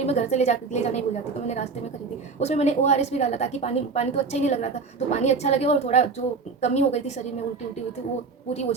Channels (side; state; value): left; quieter; 4.7 dB